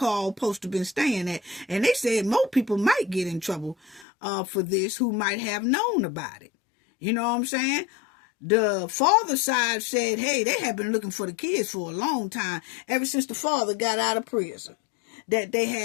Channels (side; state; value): right; drops out; at 4.0 s